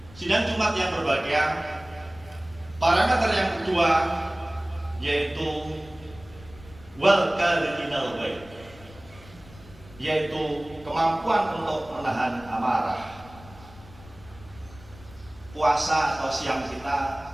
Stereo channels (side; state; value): left; noise; rumble, 21 dB below the sound